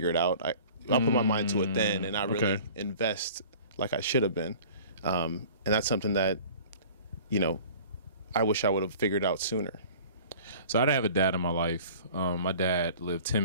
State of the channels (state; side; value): inverted; both; correlation -0.45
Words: it out. I'll put my mind to it then, and not really invest like I should have been. And that's something that, I wish I would have figured out sooner. So I didn't have a dad in my life. My dad lived